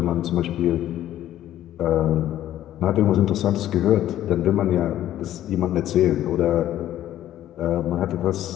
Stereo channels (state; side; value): quieter; right; 12.6 dB